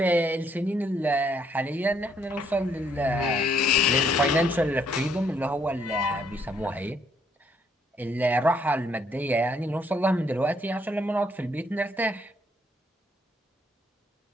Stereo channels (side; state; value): both; normal; correlation 0.69